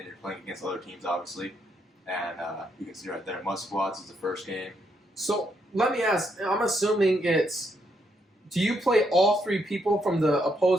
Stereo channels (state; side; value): normal; both; correlation 0.76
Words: you're playing against other teams, obviously. And you can see right there, Mud Squads is the first game. So let me ask. I'm assuming it's. Do you play all 3 people from the